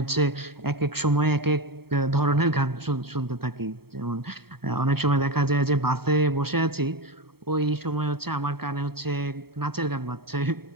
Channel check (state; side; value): late; left; 0.95 ms